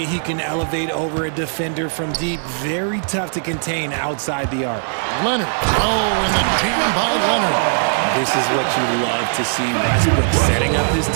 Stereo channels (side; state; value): left; silent; 66 dB below the other